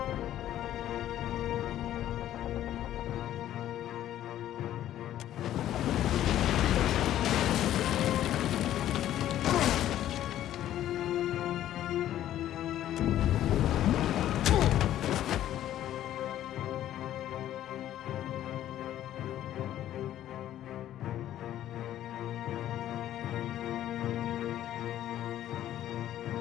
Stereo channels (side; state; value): right; quieter; 12.3 dB